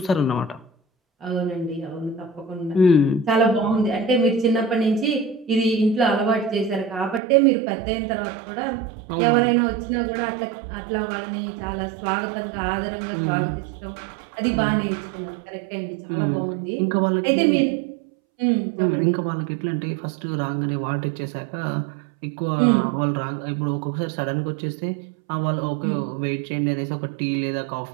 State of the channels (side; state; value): left; drops out; at 7.2 s